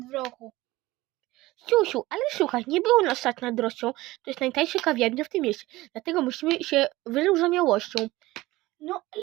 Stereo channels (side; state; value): left; quieter; 18.7 dB